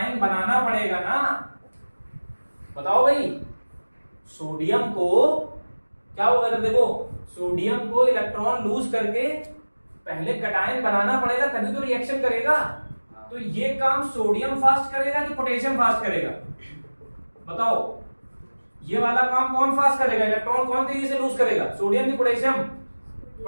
बनाना पड़ेगा ना। बताओ भाई, सोडियम को क्या होगा, जब देखो सोडियम को इलेक्ट्रॉन लूज करके पहले कटायन बनाना पड़ेगा, तभी तो रिएक्शन करेगा। तो ये काम सोडियम फास्ट करेगा कि पोटेशियम फास्ट करेगा, बताओ। ये वाला काम कौन फास्ट करेगा, इलेक्ट्रॉन कौन तेजी से लूज करेगा, सोडियम की पोटेशियम,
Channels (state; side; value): inverted; both; correlation -1.00